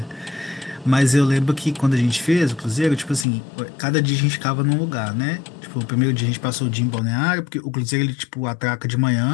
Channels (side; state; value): right; drops out; at 3.2 s